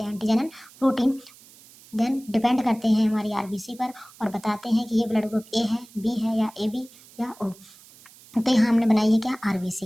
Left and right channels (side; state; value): right; noise; hiss, 23 dB below the sound